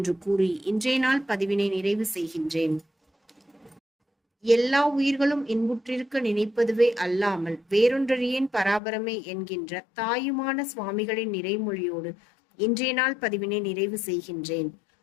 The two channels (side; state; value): right; drops out; at 8.8 s